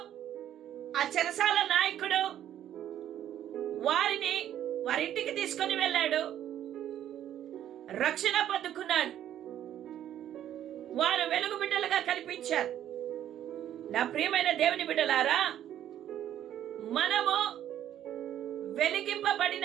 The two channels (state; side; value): quieter; left; 11.1 dB